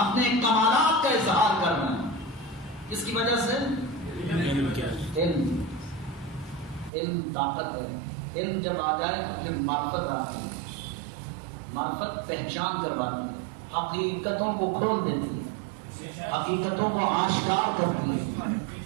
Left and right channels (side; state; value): left; drops out; at 6.9 s